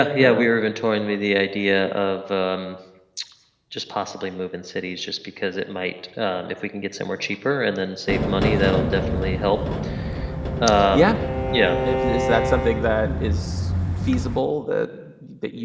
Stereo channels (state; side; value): identical; both; correlation 1.00